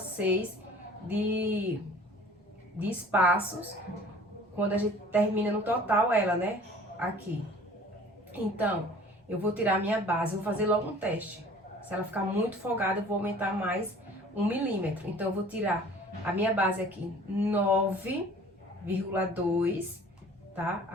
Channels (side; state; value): both; normal; correlation 0.48